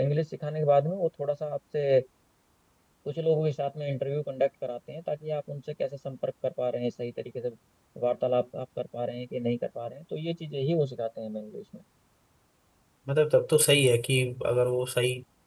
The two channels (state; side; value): identical; both; correlation 1.00